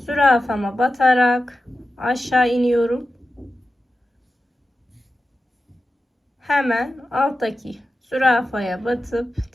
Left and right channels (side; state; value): both; normal; correlation 0.92